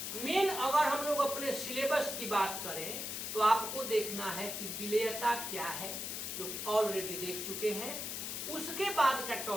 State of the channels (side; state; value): left; noise; hiss, 4 dB below the sound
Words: मेन अगर हम लोग अपने सिलेबस की बात करें तो आपको देखना है कि विलेयता क्या है, जो कि ऑलरेडी देख चुके हैं। उसके बाद का